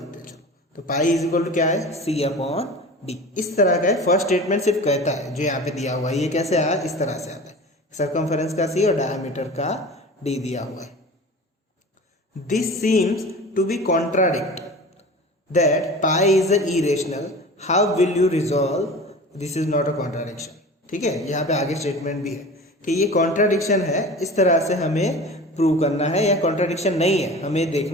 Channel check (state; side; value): normal; both; correlation 0.36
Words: हैं। तो पाई इज इक्वल टू क्या है, c अपॉन d। इस तरह का है, फर्स्ट स्टेटमेंट सिर्फ कहता है जो यहाँ पे दिया हुआ है, ये कैसे आया, इस तरह से आता है, सर्कमफेरेंस का c और डायमीटर का d दिया हुआ है। This seems to be contradict that pi is a irrational, how will you resolve, this is not a contradiction. ठीक है, यहाँ पे आगे स्टेटमेंट भी है कि ये कॉन्ट्राडिक्शन है, इस तरह से हमें प्रूव करना है, या कॉन्ट्राडिक्शन नहीं है हमें